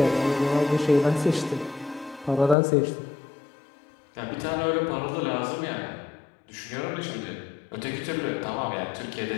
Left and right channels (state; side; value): drops out; right; at 2.6 s